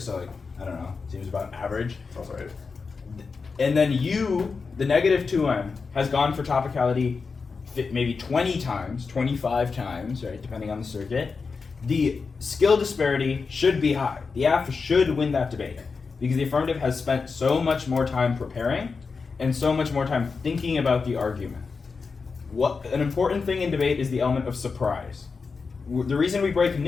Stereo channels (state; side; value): quieter; right; 4.8 dB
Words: so like, I don't know, seems about average. That's right. And then you, the negative 2M, has gone for topicality maybe 20 times, 25 times, right, depending on the circuit. The skill disparity should be high. The Aff should win that debate because the affirmative has spent so much more time preparing and so much more time thinking about the argument. An important thing in debate is the element of surprise. The reason we break